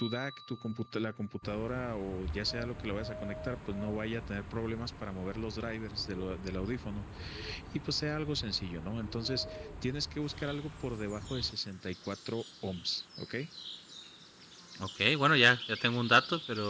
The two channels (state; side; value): identical; both; correlation 1.00